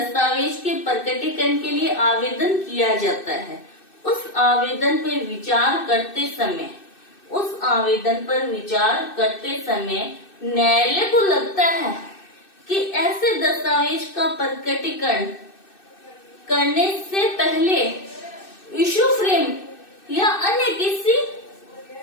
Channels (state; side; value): late; right; 2.6 ms